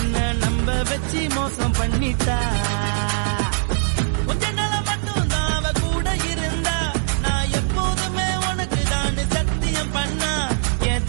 நம்ப வச்சு மோசம் பண்ணிட்டா. கொஞ்ச நாள மட்டும் தான் அவ கூட இருந்தா, நான் எப்போதுமே உனக்கு தான் சத்தியம் பண்ணா. என்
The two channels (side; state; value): left; silent; digital silence